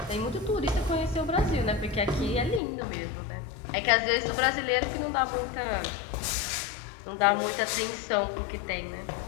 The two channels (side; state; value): right; drops out; at 2.6 s